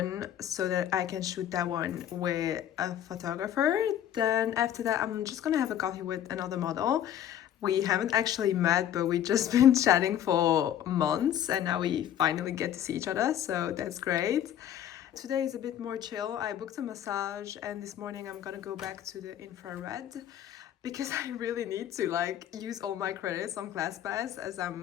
so that I can shoot that one with a photographer. Then after that, I'm just gonna have a coffee with another model. We haven't actually met, but we've just been chatting for months and now we finally get to see each other, so that's great. Today is a bit more chill. I booked a massage and this morning I'm gonna go back to the infrared because I really need to like use all my credits on ClassPass as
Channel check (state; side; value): quieter; right; 10.8 dB